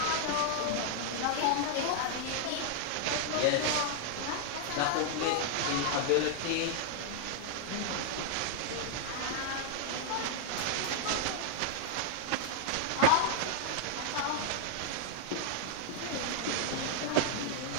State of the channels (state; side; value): different; both; correlation 0.00